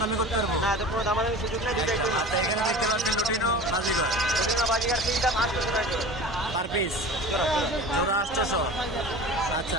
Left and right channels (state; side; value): normal; both; correlation 0.37